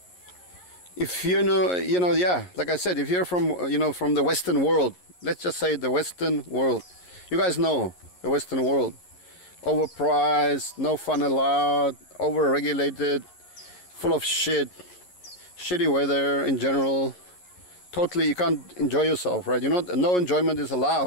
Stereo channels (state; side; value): late; right; 11 ms